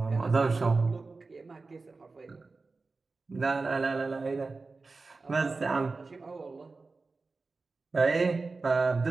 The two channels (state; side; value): quieter; left; 3.9 dB